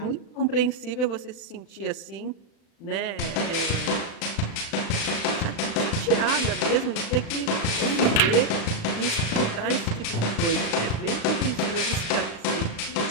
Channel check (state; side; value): late; right; 36 ms